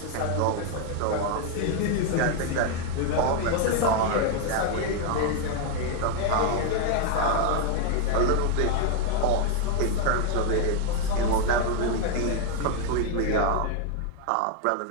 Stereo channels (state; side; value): different; both; correlation 0.01